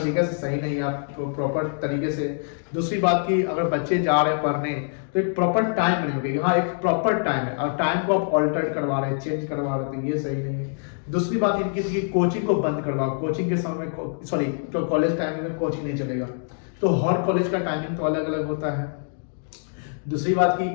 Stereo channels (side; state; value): right; silent; 62 dB below the other